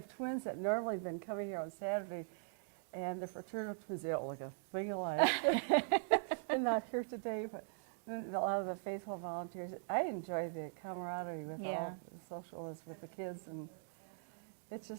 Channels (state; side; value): silent; left; digital silence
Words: twins that normally have been coming here on Saturday, and the fraternal twins, they don't look a thing alike. They're not here today, but a lot of the faithful volunteers. I enjoy the camaraderie with all the socialists with the kids, and it's